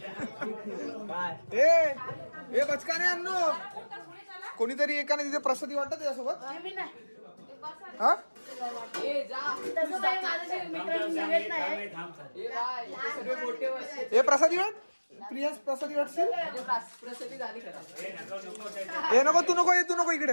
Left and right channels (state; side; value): inverted; both; correlation -1.00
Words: ए बचकाने अन्नू, कोणीतरी एकाने तिथे प्रसादी वाटत त्याच्यासोबत. हा ए प्रसादी वाट, प्रिया प्रसादी वाटशील. ए नको, तू नको इकडे,